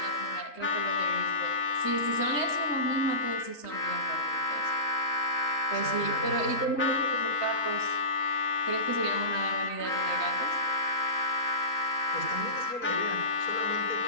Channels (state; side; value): late; right; 3.8 ms